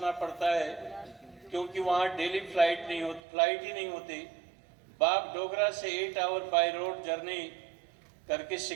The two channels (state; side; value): drops out; left; at 3.2 s